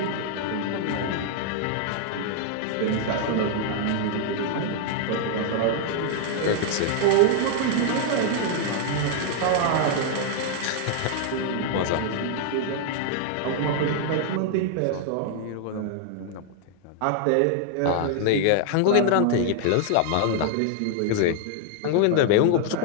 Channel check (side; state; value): both; different; correlation -0.01